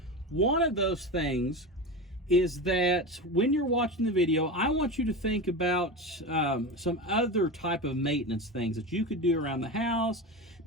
One of those things is that when you're watching the video, I want you to think about some other type of maintenance things that you could do around the house.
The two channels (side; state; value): both; normal; correlation 0.24